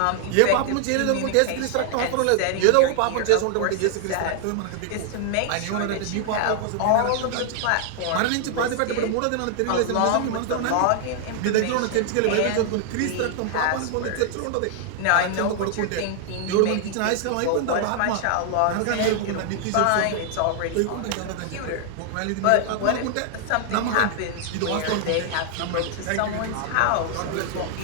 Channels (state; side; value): different; both; correlation 0.00